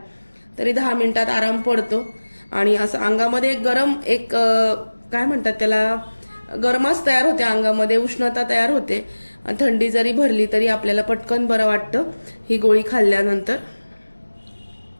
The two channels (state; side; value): inverted; both; correlation -1.00